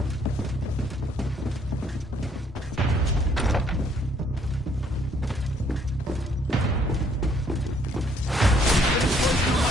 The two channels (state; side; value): normal; both; correlation 0.66